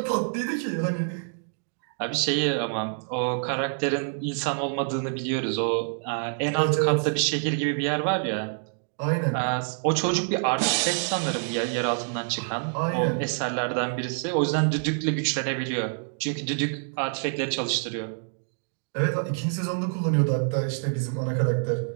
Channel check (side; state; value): left; silent; digital silence